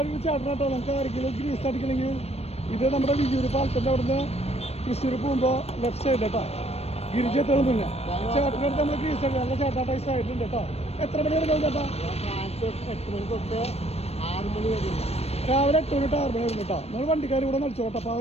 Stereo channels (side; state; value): right; late; 0.30 ms